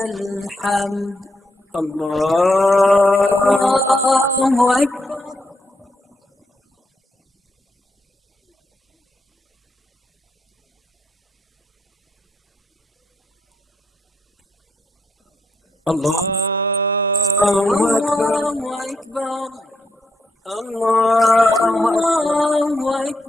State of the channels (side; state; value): both; normal; correlation 0.79